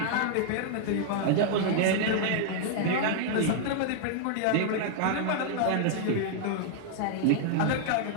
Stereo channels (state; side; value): different; both; correlation -0.01